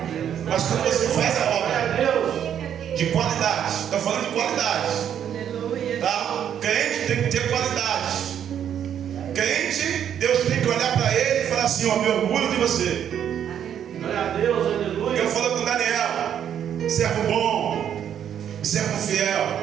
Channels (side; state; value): left; quieter; 9.3 dB